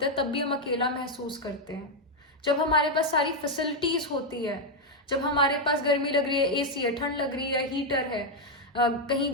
हैं तब भी हम अकेला महसूस करते हैं. जब हमारे पास सारी फैसिलिटीज होती है, जब हमारे पास गर्मी लग रही है एसी है, ठंड लग रही है हीटर है,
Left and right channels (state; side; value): normal; both; correlation 0.02